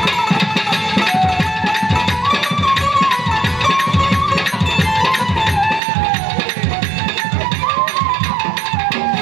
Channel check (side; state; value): left; drops out; at 5.8 s